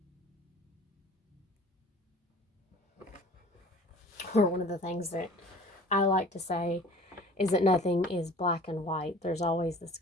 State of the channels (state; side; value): normal; both; correlation 0.46